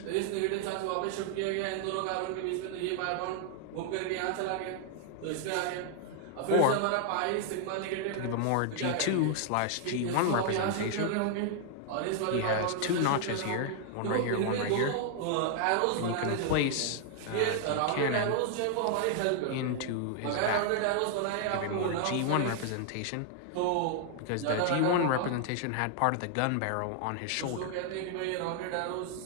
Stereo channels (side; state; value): both; different; correlation 0.00